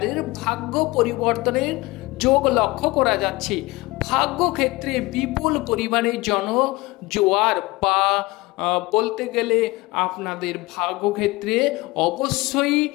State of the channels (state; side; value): quieter; right; 21.8 dB